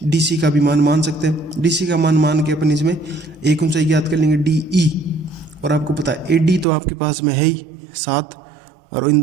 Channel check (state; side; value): drops out; left; at 6.7 s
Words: डी सी का भी मान मान सकते हैं। डी सी का मान के अपन इसमें एक ऊंचाई ज्ञात कर लेंगे डी ई। और आपको पता है ए डी तो आपके पास में है ही 7, और इन